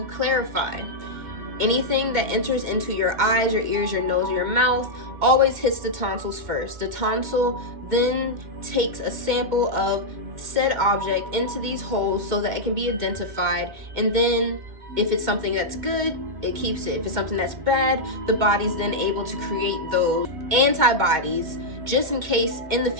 clarify, anything that enters into your eyes, your ears, your nose, or your mouth always hits the tonsils first. The tonsil then takes a sample of said object into these holes so that it can be identified, and then if it's something that's good, it keeps it. If it's something that's bad, the body's then able to create those antibodies just in case in the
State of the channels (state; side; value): late; left; 2.1 ms